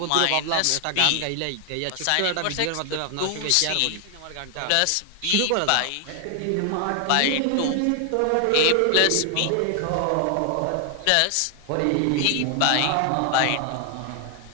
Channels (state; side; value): different; both; correlation 0.00